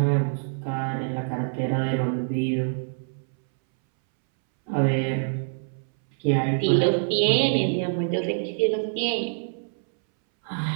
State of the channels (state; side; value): silent; left; 62 dB below the other